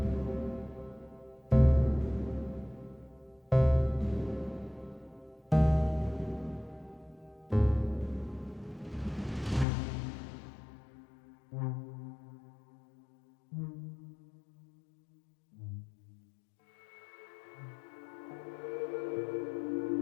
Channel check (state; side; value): drops out; right; at 9.7 s